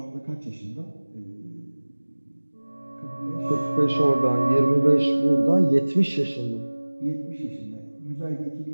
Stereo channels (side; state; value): both; inverted; correlation -1.00